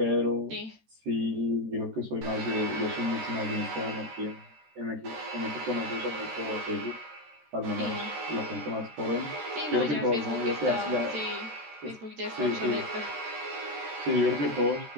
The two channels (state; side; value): late; left; 13 ms